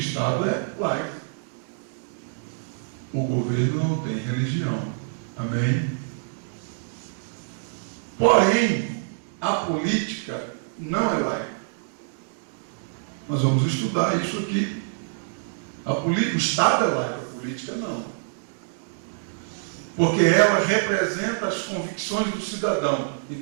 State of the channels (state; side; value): silent; left; digital silence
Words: é laico. O governo não tem religião. Amém? Porém, a política não é laica. Nós vamos estudar isso aqui. O Estado é laico, a política não. Porque ela representa as convicções do cidadão.